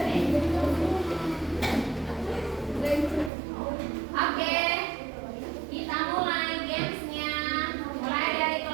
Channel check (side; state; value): left; drops out; at 3.3 s